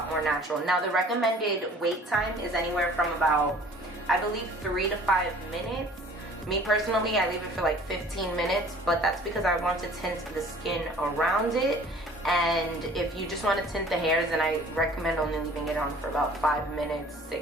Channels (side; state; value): both; normal; correlation 0.50